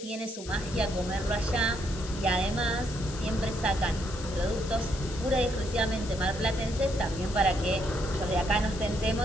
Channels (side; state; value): left; noise; hiss, 14 dB below the sound